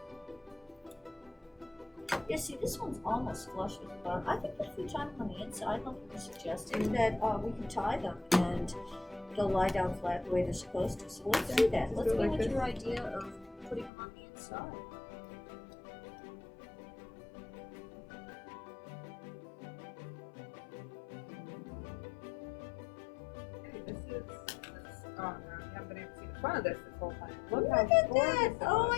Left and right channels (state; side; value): drops out; right; at 13.9 s